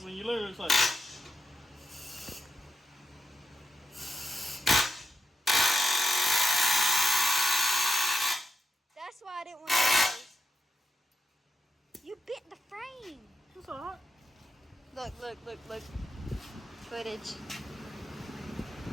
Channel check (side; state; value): both; normal; correlation 0.87